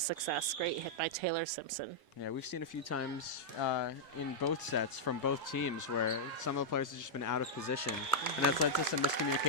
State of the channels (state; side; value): normal; both; correlation -0.06